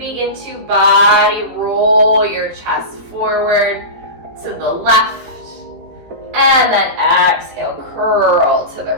to body roll your chest forward to the left. And then exhale, curl to the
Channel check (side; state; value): left; late; 18 ms